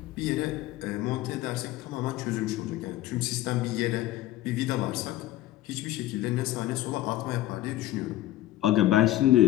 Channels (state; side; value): quieter; right; 14.9 dB